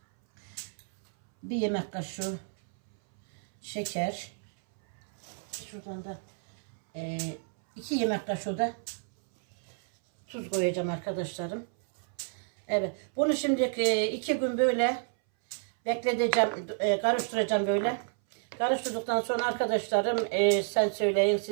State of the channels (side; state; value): left; silent; 58 dB below the other